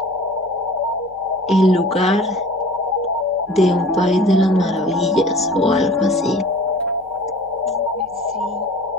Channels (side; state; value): left; noise; hum, 29 dB below the sound